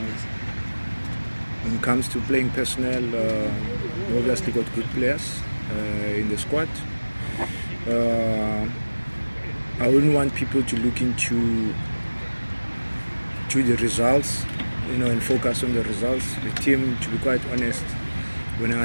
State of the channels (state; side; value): inverted; both; correlation -1.00